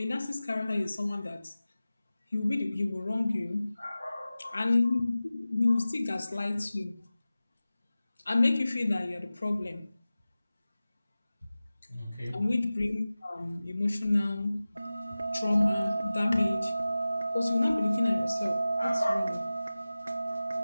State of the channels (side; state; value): both; inverted; correlation -0.96